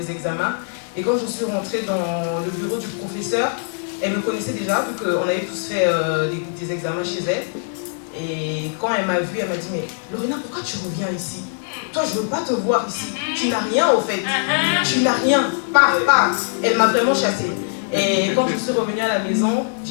examens. Et quand je suis rentrée dans le bureau du professeur, elle me connaissait déjà, vu qu'on avait tous fait des examens chez elle. Et quand elle m'a vue, elle m'a dit, mais Lorena, pourquoi tu reviens ici? Toi, je ne veux pas te voir ici. Tu n'as rien au fait. Tu n'as rien. Pas. Elle m'a vraiment chassée. Et quand je suis revenue à la maison,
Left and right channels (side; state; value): right; silent; digital silence